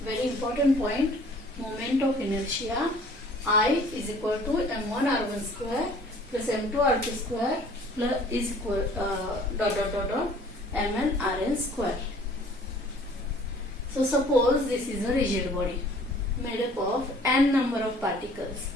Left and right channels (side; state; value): both; normal; correlation 0.53